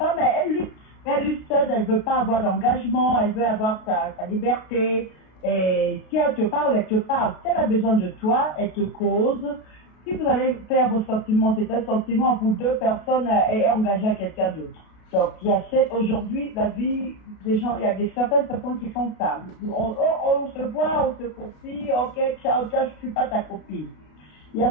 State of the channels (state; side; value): late; right; 33 ms